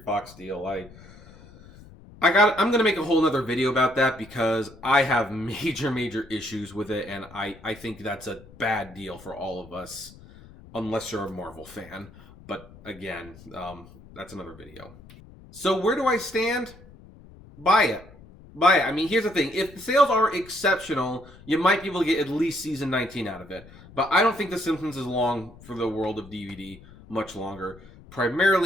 deal, I'm going to make a whole nother video about that because I have major issues with it, and I think that's a bad deal for all of us, unless you're a Marvel fan. But again, that's another video. So where do I stand? Buy it. Buy it. I mean, here's the thing. If the sales are exceptional, you might be able to get at least season 19 out of it. But I don't think The Simpsons is long for the world of DVD much longer,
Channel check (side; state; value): left; noise; rumble, 21 dB below the sound